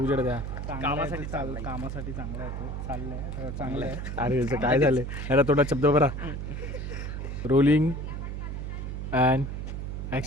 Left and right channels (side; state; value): right; noise; hum, 5 dB below the sound